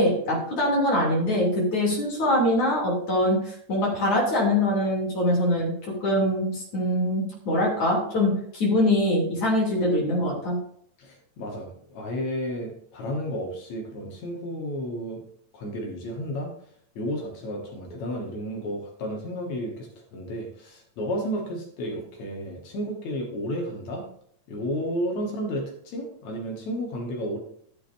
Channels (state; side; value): late; right; 9.0 ms